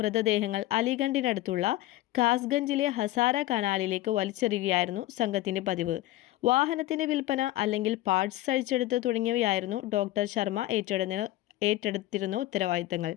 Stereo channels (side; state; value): right; quieter; 16.1 dB